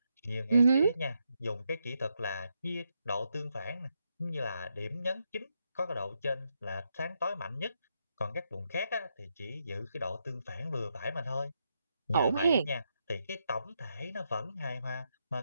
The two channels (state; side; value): inverted; both; correlation -0.82